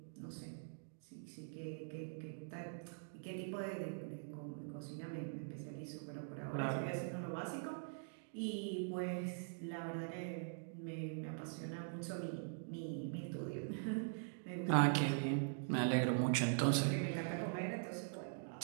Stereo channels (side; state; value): left; silent; digital silence